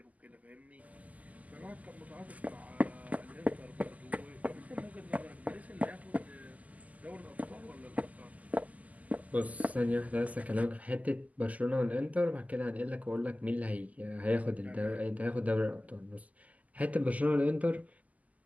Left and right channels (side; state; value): left; late; 0.076 ms